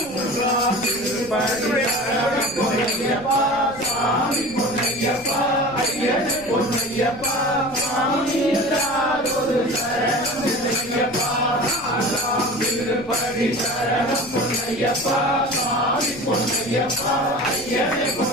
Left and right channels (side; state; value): left; noise; rumble, 20 dB below the sound